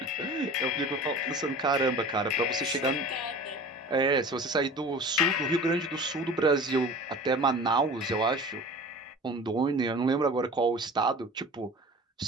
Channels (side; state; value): both; normal; correlation 0.39